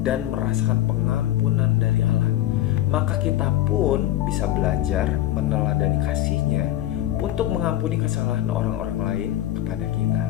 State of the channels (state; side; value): quieter; right; 13.5 dB